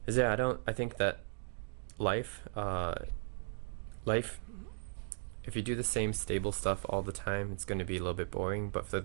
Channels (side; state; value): left; silent; digital silence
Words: I think that life, if you do the same stable stuff all the time, it's going to be a little bit boring. But for